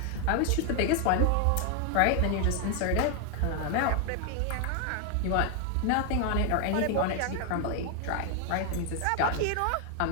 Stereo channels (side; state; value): both; different; correlation 0.01